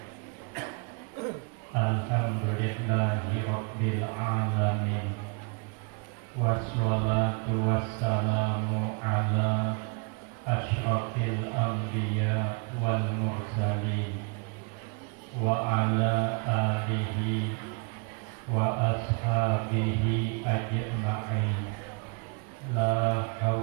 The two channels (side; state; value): left; quieter; 33.6 dB